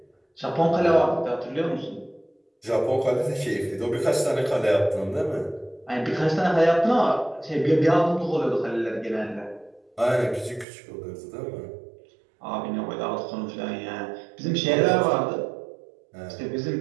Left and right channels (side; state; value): left; drops out; at 10.7 s